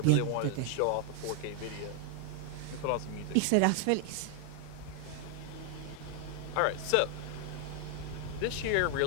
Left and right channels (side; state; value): both; different; correlation 0.00